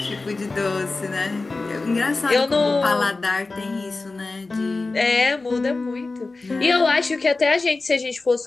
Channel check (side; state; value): right; quieter; 3.5 dB